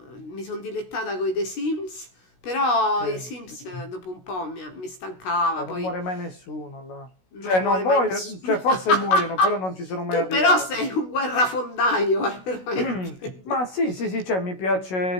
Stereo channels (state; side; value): late; right; 16 ms